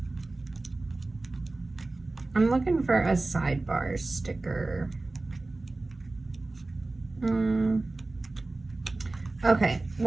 I'm looking for a sidebar sticker. Okay,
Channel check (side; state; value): left; quieter; 3.1 dB